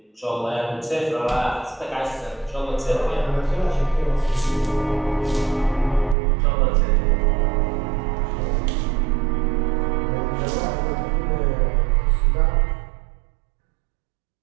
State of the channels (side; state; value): left; drops out; at 6.2 s